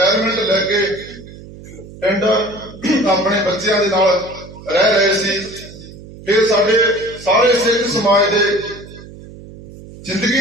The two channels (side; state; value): right; noise; hum, 17 dB below the sound